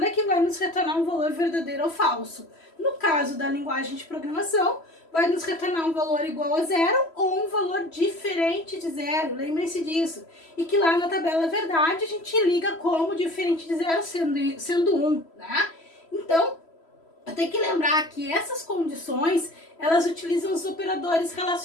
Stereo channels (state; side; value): late; right; 3.1 ms